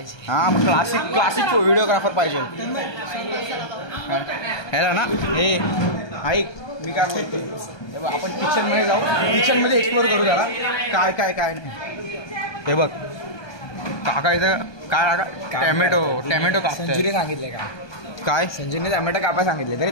हा मग क्लासिक व्हिडिओग्राफर पाहिजे. ह्याला ना हे ऐक मी काय बोलते. आपण किचन मध्ये जाऊ. किचन मध्ये एक्सप्लोर करू जरा काय काय काय नाही. हे बघ काका इथं काय टॅमॅटो कापताय. संजूने सांगितलंय का काय संजूने टॅमॅटो कापाय सांगितले तरी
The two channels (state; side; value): late; right; 1.2 ms